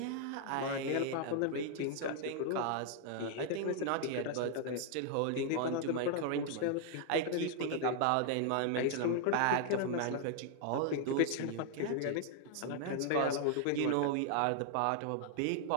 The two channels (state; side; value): different; both; correlation 0.00